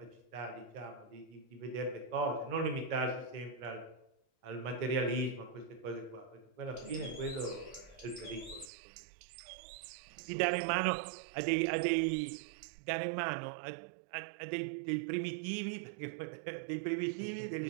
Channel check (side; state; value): left; drops out; at 8.7 s